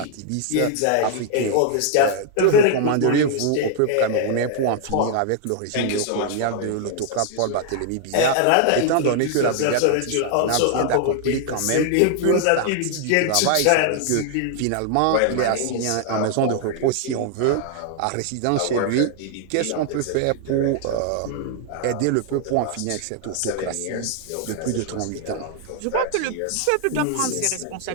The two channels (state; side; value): different; both; correlation 0.00